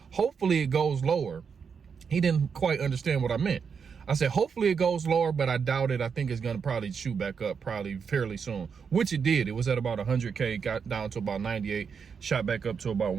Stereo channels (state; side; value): quieter; left; 6.3 dB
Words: hopefully it goes lower. He didn't quite understand what I meant. I said, hopefully it goes lower, but I doubt it. I think it's going to probably shoot back up probably fairly soon, which it did. It was at about 100K, got down to about 98, shot back up to about